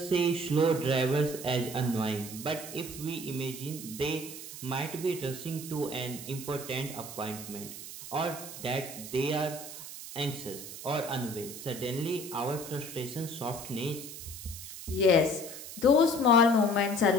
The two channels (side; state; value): right; noise; hiss, 11 dB below the sound